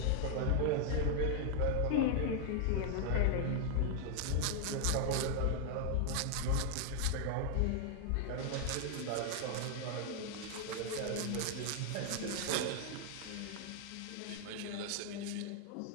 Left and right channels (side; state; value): both; different; correlation 0.00